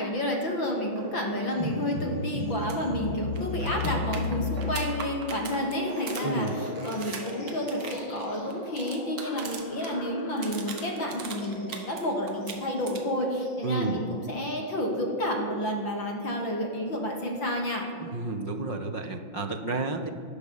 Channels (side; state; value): right; late; 5.3 ms